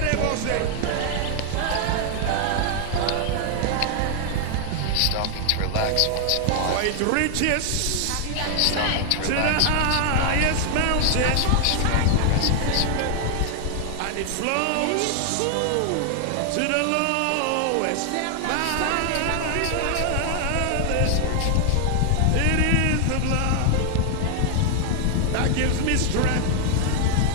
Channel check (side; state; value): both; different; correlation 0.00